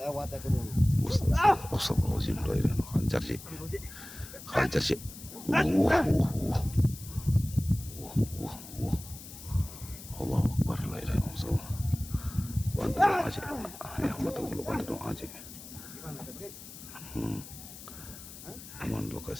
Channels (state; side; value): noise; left; hiss, 15 dB below the sound